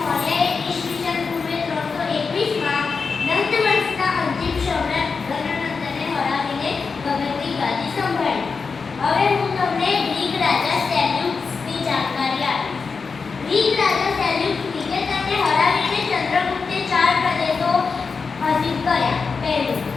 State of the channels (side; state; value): right; quieter; 5.0 dB